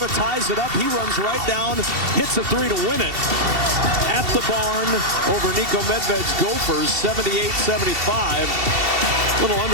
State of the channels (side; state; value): left; late; 2.7 ms